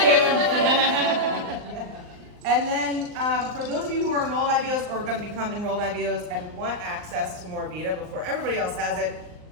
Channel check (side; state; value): left; late; 39 ms